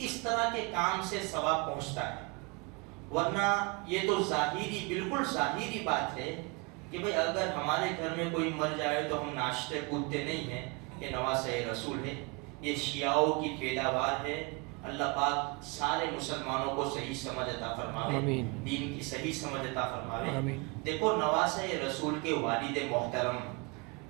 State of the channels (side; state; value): left; quieter; 28.9 dB